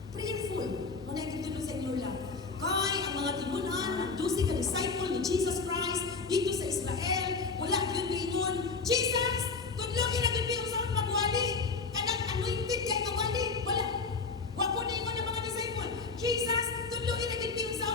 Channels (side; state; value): right; quieter; 4.5 dB